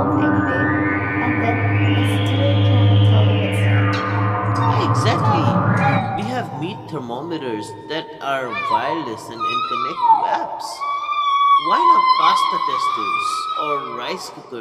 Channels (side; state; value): both; identical; correlation 1.00